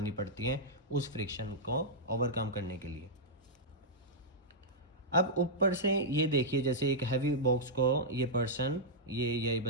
पड़ती है उस फ्रिक्शन को ओवरकम करने के लिए। अब ऊपर से ये देखिए, जैसे एक हैवी बॉक्स को ये पर्सन, यही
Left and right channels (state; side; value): normal; both; correlation -0.09